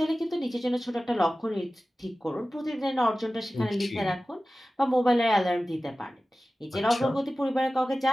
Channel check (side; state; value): both; normal; correlation 0.96